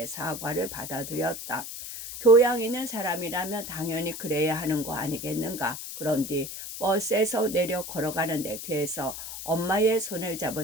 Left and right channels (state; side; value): noise; left; hiss, 9 dB below the sound